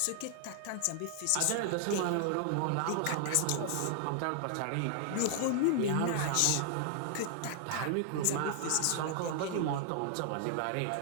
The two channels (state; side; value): different; both; correlation -0.01